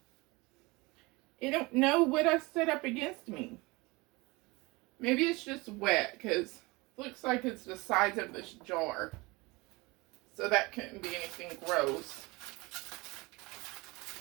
I don't know what I set up against me. Maybe it's just wet, because it looks like it's the size of this jar. So that couldn't be anything gross.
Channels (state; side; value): quieter; left; 24.3 dB